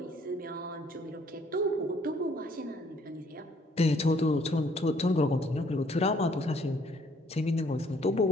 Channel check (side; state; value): both; normal; correlation 0.63